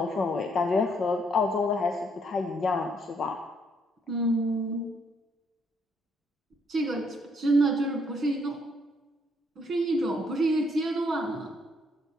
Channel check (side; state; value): both; normal; correlation 0.70